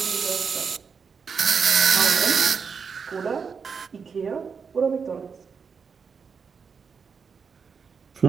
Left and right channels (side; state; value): left; quieter; 5.9 dB